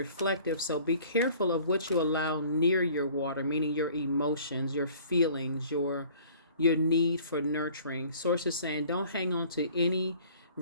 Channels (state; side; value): inverted; both; correlation -0.51